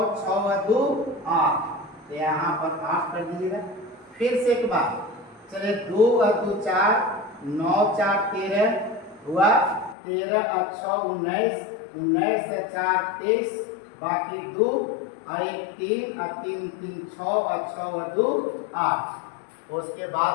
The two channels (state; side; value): drops out; right; at 10.0 s